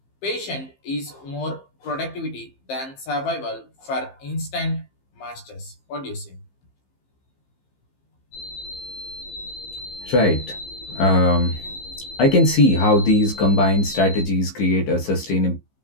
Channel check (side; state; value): right; late; 15 ms